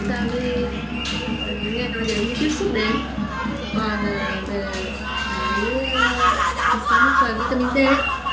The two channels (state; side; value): identical; both; correlation 1.00